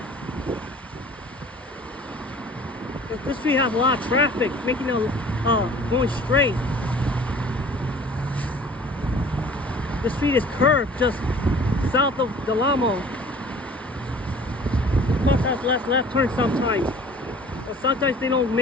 This street has a lot of traffic, making it going straight. The street is curved just south of Delamo. Cars have left turn sometimes. But sometimes they don't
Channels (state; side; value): normal; both; correlation 0.48